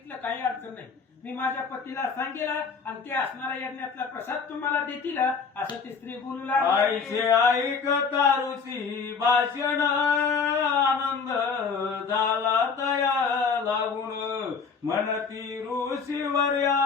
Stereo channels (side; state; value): right; quieter; 5.5 dB